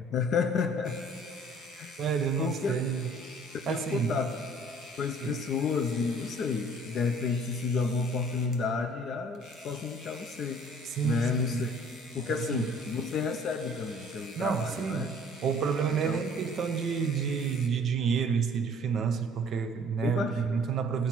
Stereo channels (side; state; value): both; normal; correlation 0.54